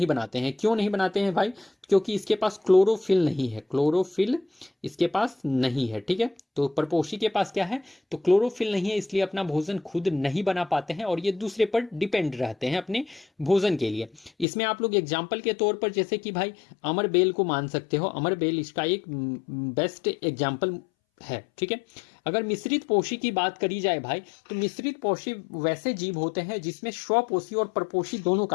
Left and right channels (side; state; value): right; drops out; at 14.5 s